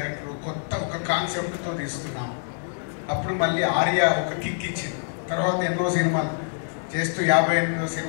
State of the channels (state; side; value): silent; right; digital silence